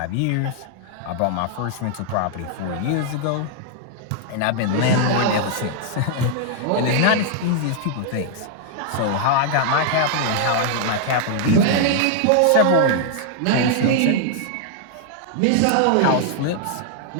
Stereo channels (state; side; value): different; both; correlation -0.01